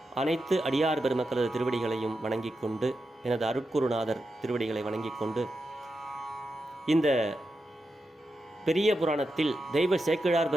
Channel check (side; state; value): both; normal; correlation 0.88